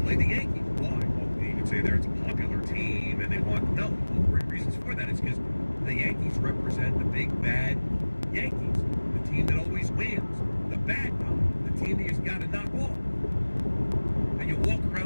the Yankees. Why? Well, you could say it's a popular team and they want, no, reasons for that is because the Yankees represent the big bad Yankees, the team that always wins, the bad guy, the team that you've got to knock off. And you walk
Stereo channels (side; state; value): both; inverted; correlation -1.00